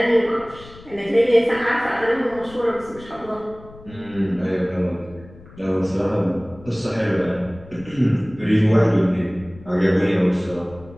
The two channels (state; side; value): noise; left; rumble, 20 dB below the sound